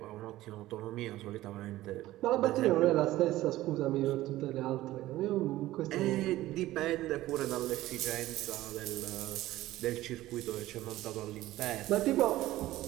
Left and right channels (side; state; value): left; quieter; 15.9 dB